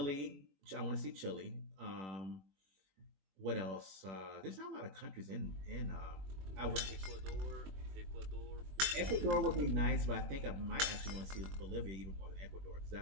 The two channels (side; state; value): left; late; 21 ms